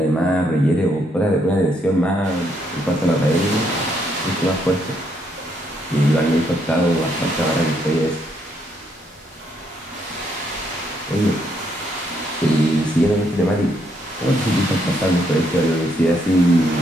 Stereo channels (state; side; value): normal; both; correlation 0.73